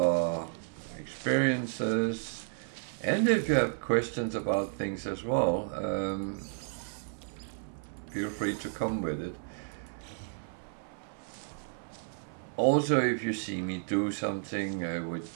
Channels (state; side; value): silent; left; 56 dB below the other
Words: experiences. And if you have questions about things as well, feel free to come with it. Also, if you see me do something